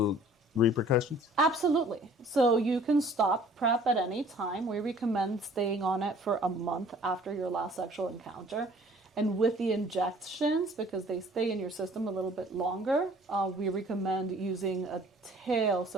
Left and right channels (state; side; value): normal; both; correlation 0.53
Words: repercussions? Absolutely. So you can stop PrEP at any time. We recommend staying on it for a month after your last sexual encounter. And with the injections, because they stay in your system a little bit longer, we recommend using a tail.